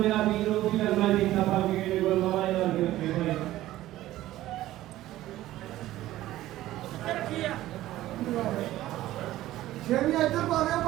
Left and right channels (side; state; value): left; quieter; 15.1 dB